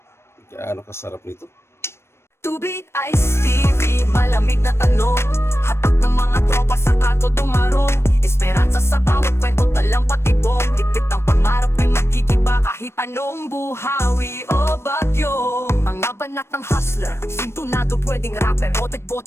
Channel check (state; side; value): late; right; 0.12 ms